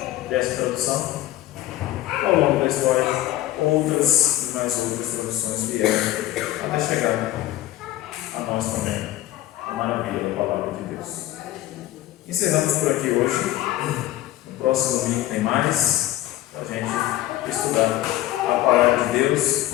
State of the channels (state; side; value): quieter; right; 15.0 dB